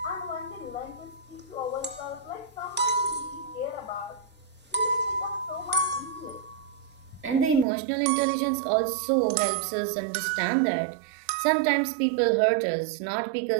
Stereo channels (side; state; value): left; drops out; at 7.7 s